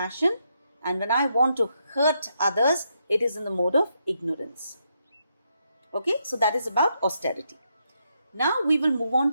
And when I want to hurt others, it is in the mode of ignorance. Okay, so that is about austerity. Now we will move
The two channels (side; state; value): both; inverted; correlation -0.79